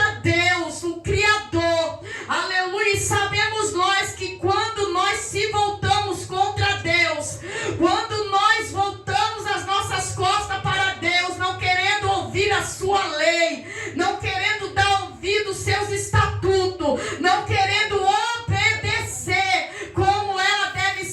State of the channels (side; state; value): both; identical; correlation 1.00